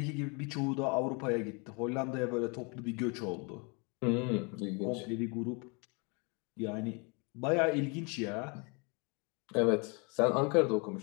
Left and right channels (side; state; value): right; quieter; 32.1 dB